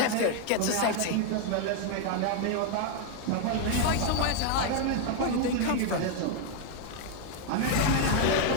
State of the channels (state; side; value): different; both; correlation 0.00